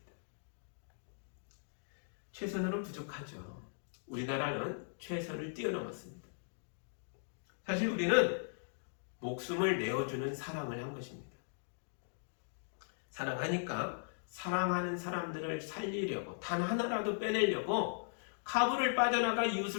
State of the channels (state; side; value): silent; right; digital silence